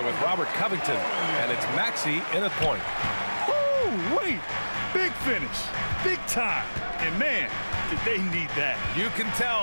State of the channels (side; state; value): both; inverted; correlation -1.00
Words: with Robert Covington. And it's Maxey in at point. Woo, wait. Big finish. Big time. And man, did they need that. You can